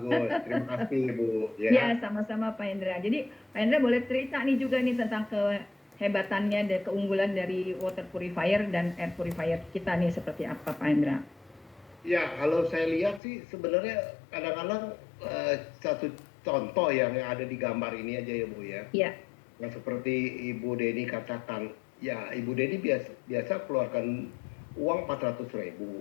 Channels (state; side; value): drops out; right; at 13.2 s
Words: Terima kasih, Bu. Ya Ya. sama-sama Pak Hendra. Jadi Pak Hendra boleh cerita nih juga nih tentang kehebatannya dan keunggulan dari water purifier dan air purifier kita nih seperti apa Pak Hendra. Ya, kalau saya lihat sih sebenarnya kadang-kadang satu contoh yang ada di gambar ini aja ya, Bu ya. Iya, Yang seperti Ibu Deni katakan, ya Ibu Deni biasa keluarkan uang 400.000